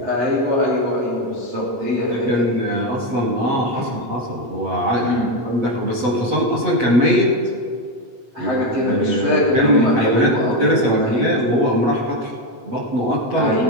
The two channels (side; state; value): left; late; 8.0 ms